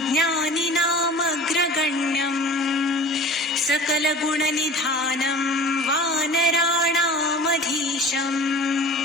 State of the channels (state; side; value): normal; both; correlation 0.41